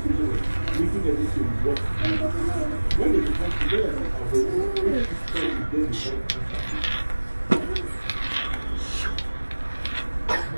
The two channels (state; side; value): inverted; both; correlation -1.00